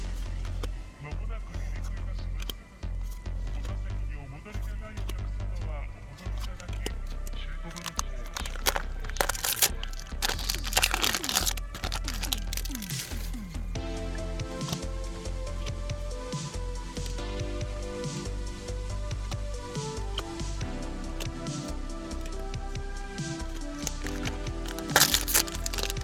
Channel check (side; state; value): both; identical; correlation 1.00